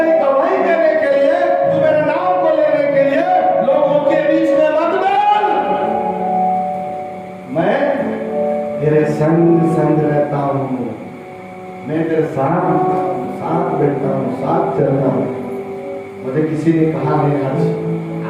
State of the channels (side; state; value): both; identical; correlation 1.00